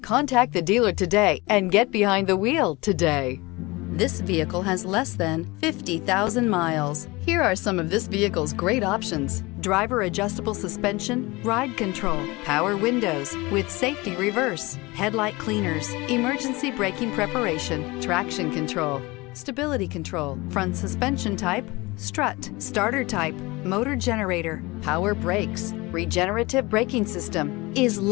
Contact the dealer today and get behind the wheel today. This vehicle has less than 50,000 miles. Here are some of this vehicle's great options: driver adjustable suspension, ride control, power windows with safety reverse, headlight cleaners, emergency braking preparation, traction control, stability control, front suspension type, strut, starter type, motor generator, power brakes, regenerative braking system. Is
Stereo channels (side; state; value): right; quieter; 23.0 dB